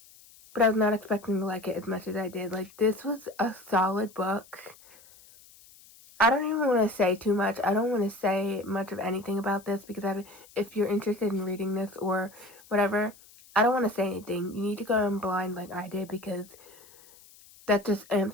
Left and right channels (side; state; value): left; noise; hiss, 24 dB below the sound